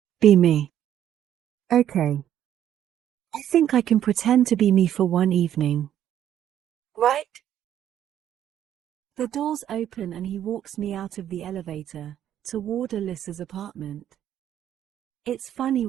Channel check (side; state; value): left; quieter; 10.8 dB